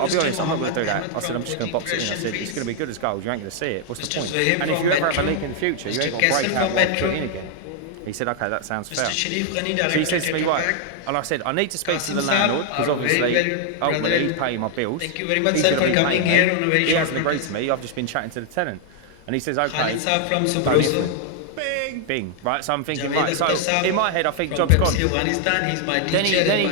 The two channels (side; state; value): both; different; correlation 0.00